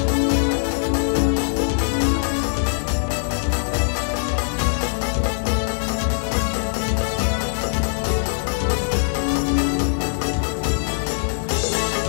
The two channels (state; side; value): silent; right; digital silence